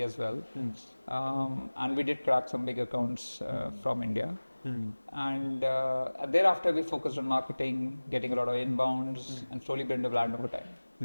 as well. And we did crack some big accounts from India. And thereafter we focused on marketing, getting a lot of inbounds, and slowly built a brand over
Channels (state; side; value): inverted; both; correlation -1.00